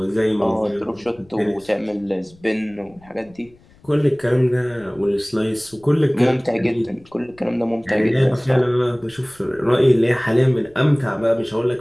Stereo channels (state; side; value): noise; left; rumble, 28 dB below the sound